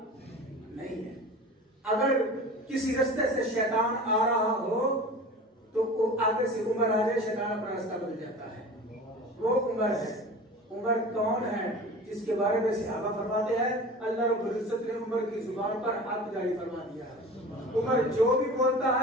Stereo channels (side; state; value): both; normal; correlation 0.37